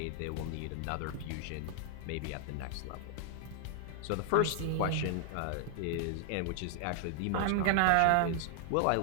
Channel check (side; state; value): both; different; correlation 0.00